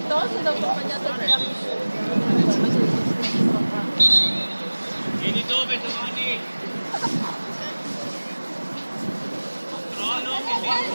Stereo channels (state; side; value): inverted; both; correlation -1.00